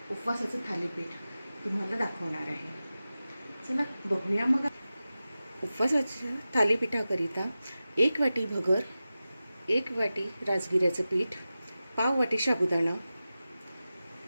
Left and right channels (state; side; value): inverted; both; correlation -0.95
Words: उपवासाचं थालीपीठ तुम्हाला दाखवणार आहे। चला बघूया मग। उपवासाच्या थालीपीठाकरिता 1 वाटी भगर, 1 वाटी राजगिऱ्याचं पीठ, पाव वाटी साबुदाणा,